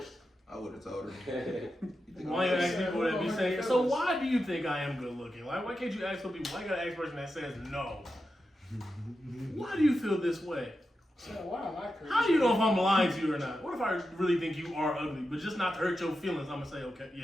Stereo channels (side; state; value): both; normal; correlation 0.89